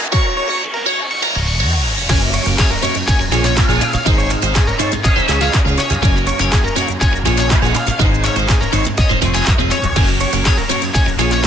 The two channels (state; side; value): normal; both; correlation 0.75